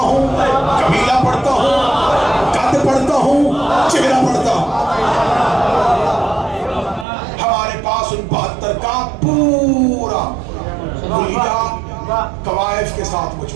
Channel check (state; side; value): drops out; left; at 7.1 s